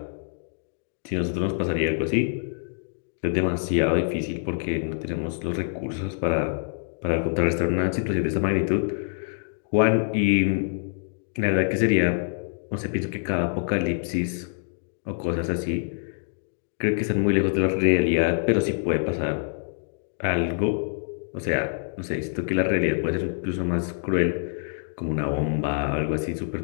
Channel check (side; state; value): right; silent; digital silence